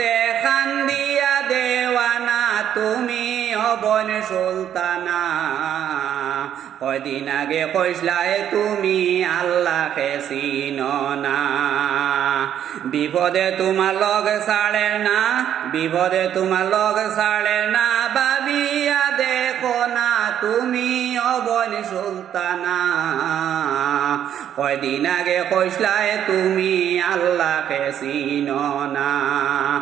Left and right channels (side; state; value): left; quieter; 10.0 dB